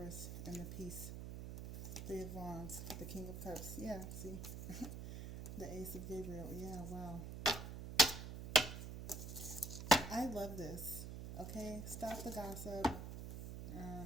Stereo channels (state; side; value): noise; right; hum, 7 dB below the sound